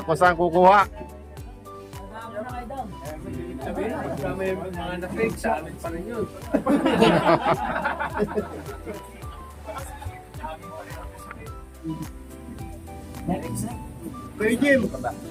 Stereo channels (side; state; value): both; identical; correlation 1.00